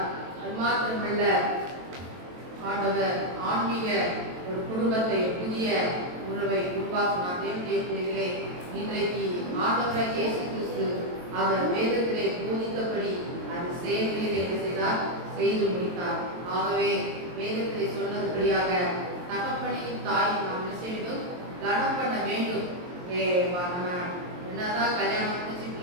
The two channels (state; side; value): late; left; 23 ms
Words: அது மாத்திரமல்ல, ஆண்டவர் ஆன்மீக ஒரு குடும்பத்தை, புதிய உறவை உருவாக்கினார். தேவனுடைய பிள்ளைகளே, இன்றைக்கு ஆண்டவராய் இயேசு கிறிஸ்து அவர் வேதத்திலே போதித்தபடி அது செயல்களில் என்ன செய்தார்? செய்து முடித்தார். ஆகவே வேதத்திலே சொன்னதுபடியாக தகப்பனையும் தாயும் நாம் என்ன செய்ய வேண்டும்? கனம் பண்ண வேண்டும். நம்ம என்னதான் கல்யாணம் முடிச்சு